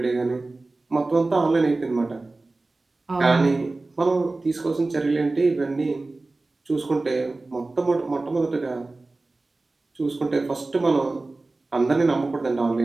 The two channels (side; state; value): left; quieter; 3.2 dB